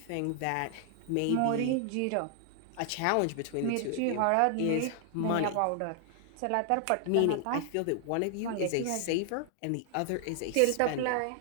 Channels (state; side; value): different; both; correlation 0.00